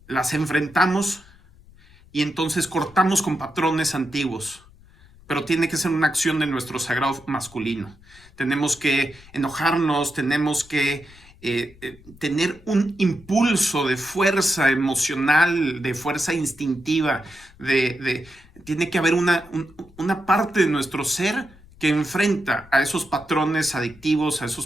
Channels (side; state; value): left; noise; rumble, 25 dB below the sound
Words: las enfrentamos y entonces cortamos con patrones antiguos. Pero tiene que ser una acción de nuestro sagrado masculino. Tenemos que enojarnos, tenemos que tener un impulso de fuerza emocional, de fuerza instintiva, tiene que haber una parte de nuestro ser que enfrenta a esos patrones adictivos, a